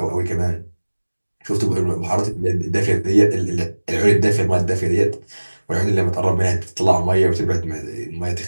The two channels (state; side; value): inverted; both; correlation -1.00